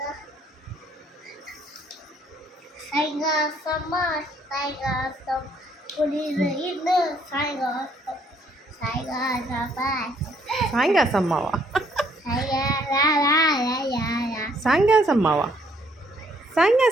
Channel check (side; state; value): both; normal; correlation 0.66